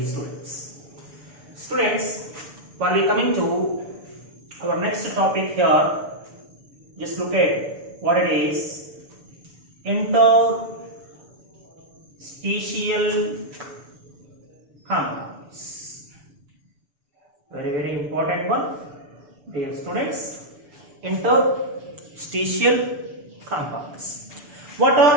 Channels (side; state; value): left; late; 6.9 ms